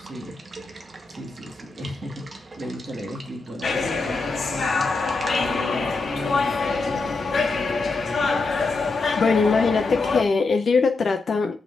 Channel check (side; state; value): right; quieter; 3.8 dB